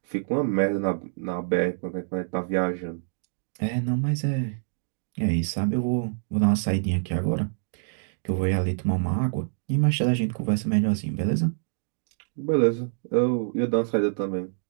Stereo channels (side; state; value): left; silent; digital silence